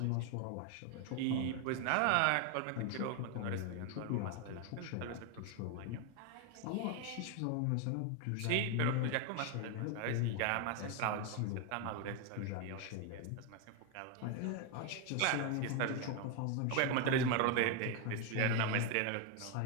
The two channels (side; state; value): both; different; correlation 0.01